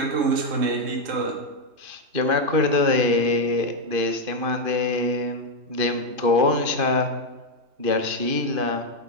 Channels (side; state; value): left; late; 2.5 ms